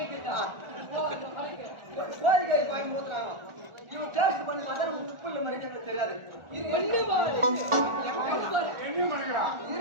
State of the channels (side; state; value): left; late; 1.4 ms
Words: கோழிக்காரி பாய்க்கு ஊத்துனாங்க. இவன் டேஸ்ட் பண்ணி பார்த்தா உப்பு இல்லை மாதிரி எங்களுக்கு தெரியாது.